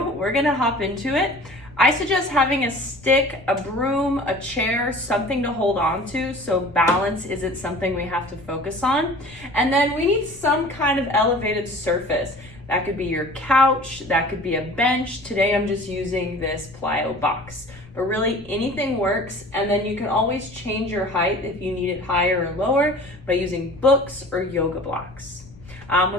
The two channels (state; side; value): noise; left; rumble, 22 dB below the sound